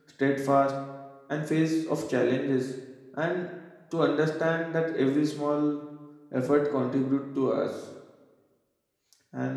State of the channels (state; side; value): identical; both; correlation 1.00